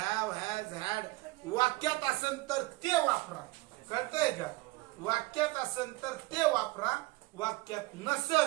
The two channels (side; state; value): left; quieter; 21.6 dB